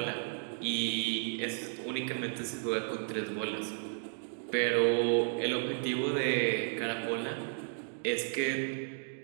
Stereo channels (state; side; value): silent; left; digital silence